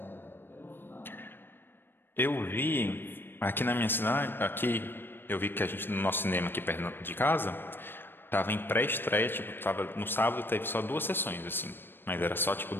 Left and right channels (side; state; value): right; late; 0.099 ms